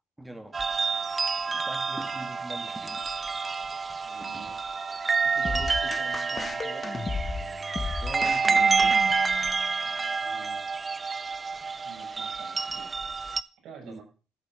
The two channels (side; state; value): left; quieter; 3.8 dB